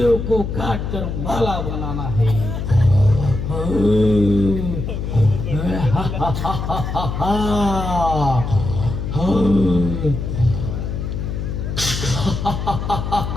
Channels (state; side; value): noise; left; hum, 4 dB below the sound